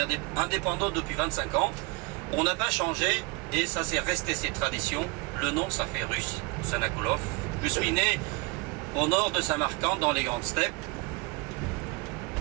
indépendant depuis 25 ans. On n'a pas changé et ça c'est resté cette tradition. Le nom, ça fait russe, Sanakoulov. Je suis né au nord de Samarcande, dans les grandes steppes,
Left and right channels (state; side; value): quieter; left; 27.0 dB